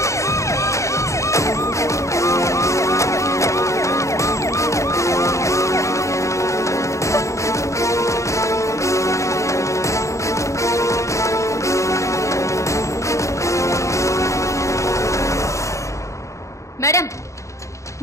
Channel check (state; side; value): late; right; 0.15 ms